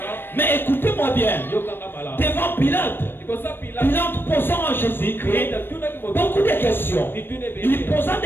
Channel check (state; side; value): late; right; 0.099 ms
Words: Mais écoutez-moi bien, devant Pilate, Pilate posant à Jésus-Christ beaucoup de questions. Il posant